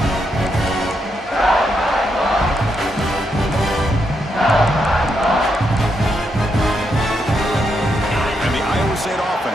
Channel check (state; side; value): normal; both; correlation 0.80